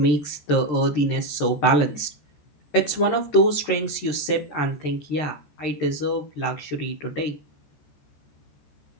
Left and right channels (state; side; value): late; right; 13 ms